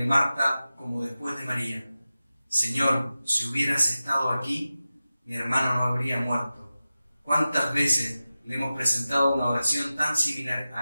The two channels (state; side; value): inverted; both; correlation -0.95